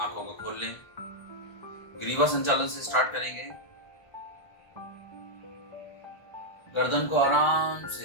को खोल लें। ग्रीवा संचालन से स्टार्ट करेंगे। गर्दन को आराम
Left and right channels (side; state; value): right; late; 1.3 ms